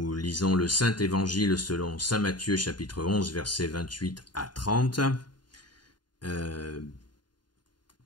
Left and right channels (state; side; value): late; right; 0.71 ms